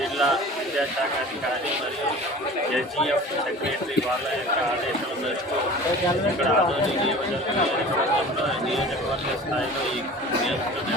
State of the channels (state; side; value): normal; both; correlation 0.40